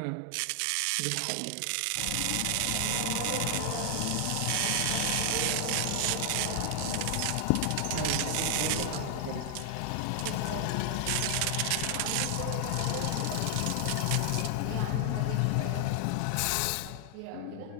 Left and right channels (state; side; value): different; both; correlation 0.00